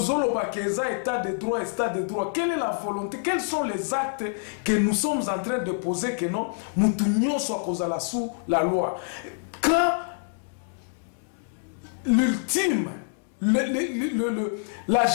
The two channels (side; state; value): right; silent; digital silence